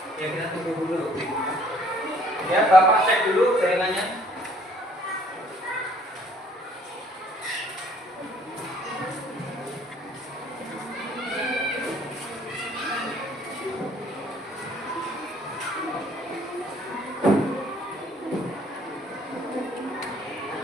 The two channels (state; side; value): normal; both; correlation 0.60